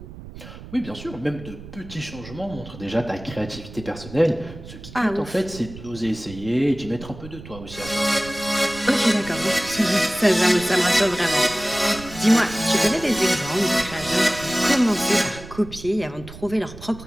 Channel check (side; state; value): right; noise; rumble, 15 dB below the sound